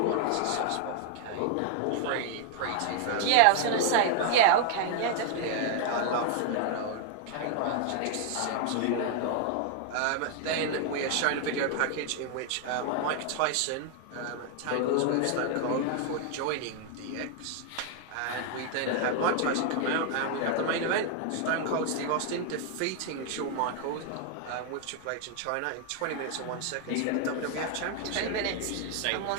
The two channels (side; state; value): both; different; correlation 0.00